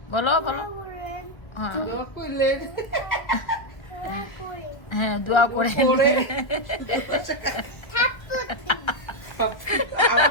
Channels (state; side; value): late; right; 1.3 ms